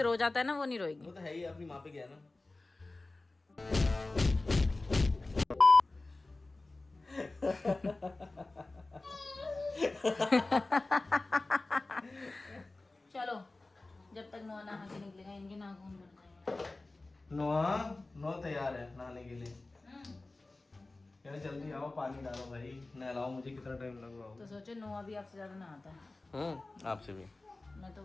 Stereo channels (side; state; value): right; quieter; 3.1 dB